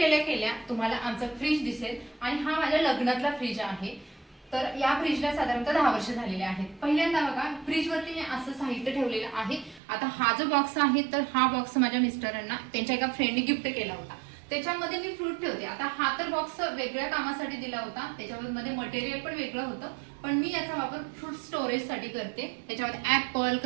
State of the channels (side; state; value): left; drops out; at 9.8 s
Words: केल्या तुम्हाला आमचा फ्रीज दिसेल आणि हा माझ्या लग्नातला फ्रीज आहे. तर या फ्रीजला साधारणतः 10 वर्ष झालेले आहेत. पहिल्यांदा बघा फ्रीज वरती मी असं साहित्य ठेवलेलं आहे. आता हा जो बॉक्स आहे तर हा बॉक्स माझ्या मिस्टरांना त्यांच्या एका फ्रेंडने गिफ्ट केला होता. त्याच्यामध्ये मी फ्रूट ठेवते. आता हा तर बॉक्स वेगळ्या कामासाठी दिला होता, त्याच्यामध्ये मटेरियल पण वेगळं होतं, पण मी याचा वापर फ्रूट स्टोरेज साठी करते. त्याच्यामध्ये ऍपल,